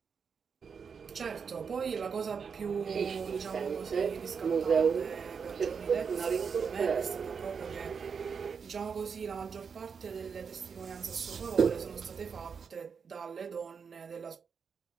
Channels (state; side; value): quieter; left; 6.1 dB